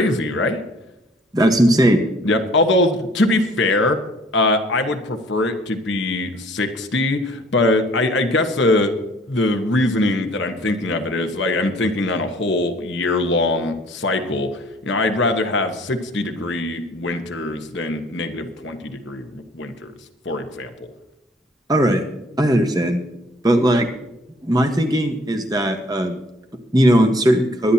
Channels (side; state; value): both; normal; correlation 0.57